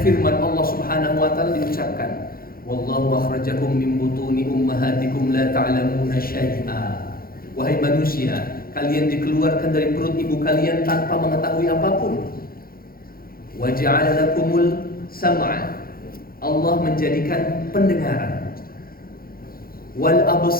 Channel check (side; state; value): right; late; 0.43 ms